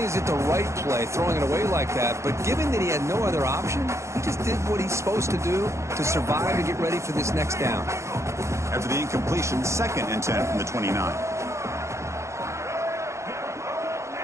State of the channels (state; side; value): late; left; 0.14 ms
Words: is it the right play, throwing it away like that, but given that he had no other option, he just did what he's supposed to do to survive and get ready for this next down. After the incompletion, 2nd and 10 from the 29.